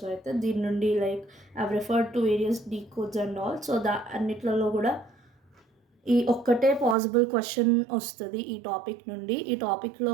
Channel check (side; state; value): left; drops out; at 7.0 s